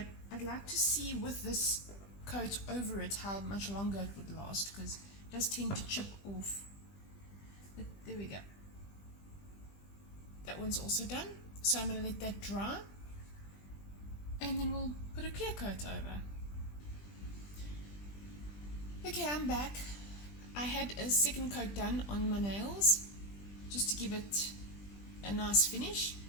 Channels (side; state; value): right; late; 20 ms